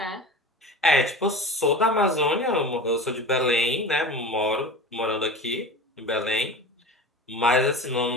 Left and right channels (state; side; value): normal; both; correlation 0.33